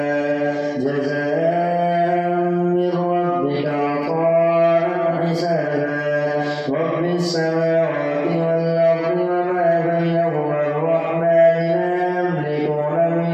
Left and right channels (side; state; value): both; identical; correlation 1.00